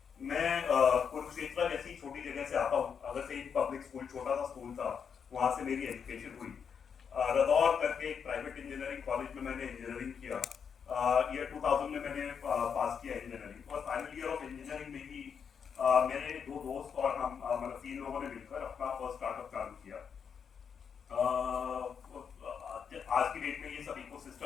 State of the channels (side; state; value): right; quieter; 6.9 dB